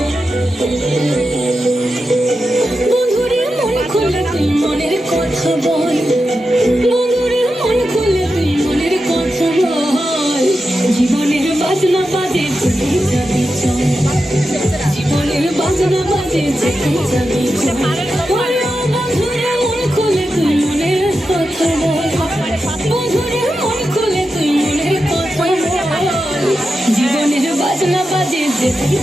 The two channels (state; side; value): normal; both; correlation 0.90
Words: বাজনা বাজে যেখানে